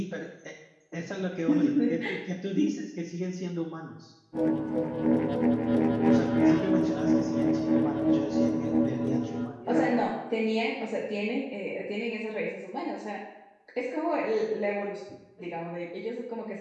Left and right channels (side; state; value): both; identical; correlation 1.00